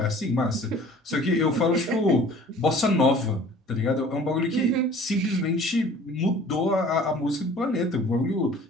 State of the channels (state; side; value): normal; both; correlation 0.48